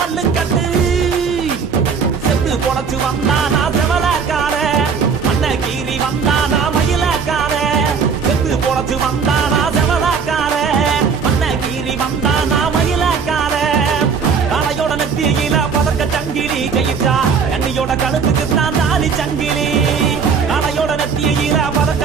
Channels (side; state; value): left; quieter; 5.9 dB